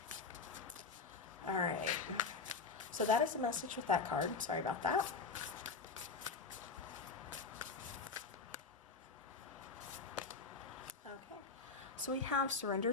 All right. So that is the message with that card. Sorry about that. Okay. So we have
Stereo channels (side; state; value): right; quieter; 4.7 dB